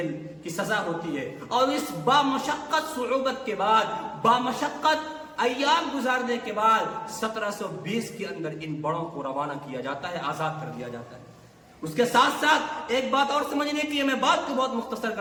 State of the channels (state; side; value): identical; both; correlation 1.00